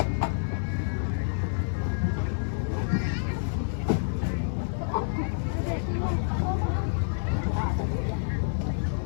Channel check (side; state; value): right; silent; 59 dB below the other